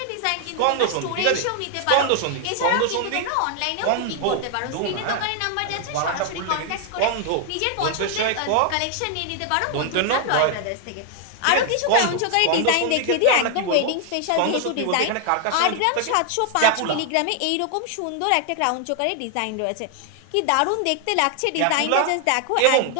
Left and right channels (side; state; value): both; different; correlation 0.00